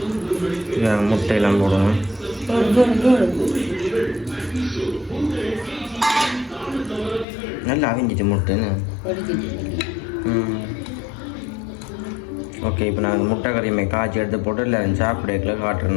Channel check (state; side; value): drops out; right; at 7.2 s